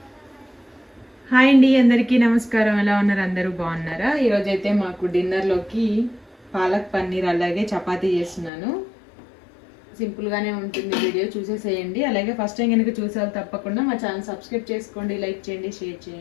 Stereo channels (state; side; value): drops out; right; at 8.5 s